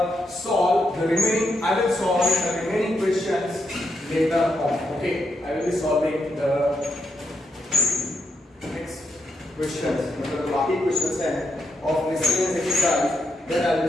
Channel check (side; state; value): both; normal; correlation 0.81